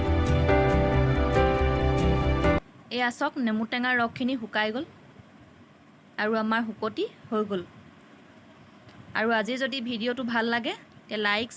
এয়া চাওক নেমু টেঙাৰ ৰসখিনি শুকাই গ'ল আৰু আমাৰ শুকতি হৈ গ'ল। আৰু আজি যদি ভিডিঅ'টো ভাল লাগে তে লাইক,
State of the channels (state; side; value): identical; both; correlation 1.00